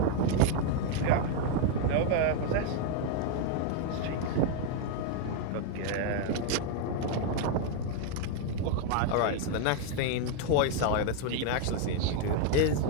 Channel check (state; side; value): different; both; correlation 0.01